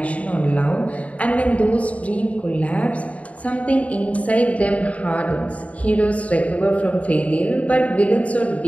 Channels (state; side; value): late; right; 0.067 ms